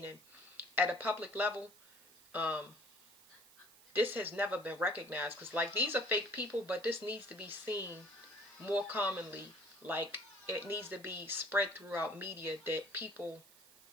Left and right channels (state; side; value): noise; right; hiss, 24 dB below the sound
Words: at a public level, um, this has never been recognized. Because, like, these are fake people, but this needs to be seen more commonly. Like, it needs to be spread throughout media that people